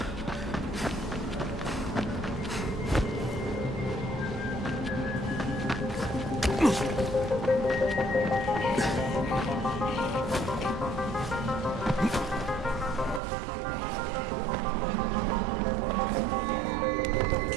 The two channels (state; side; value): drops out; left; at 13.2 s